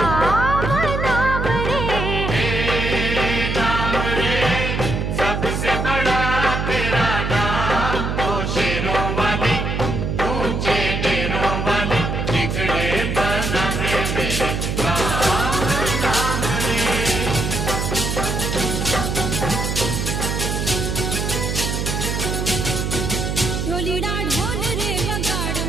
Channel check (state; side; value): noise; right; hum, 1 dB below the sound